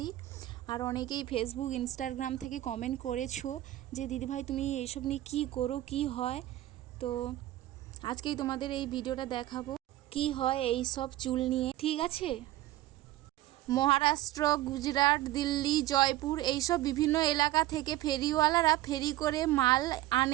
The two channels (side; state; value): left; quieter; 15.6 dB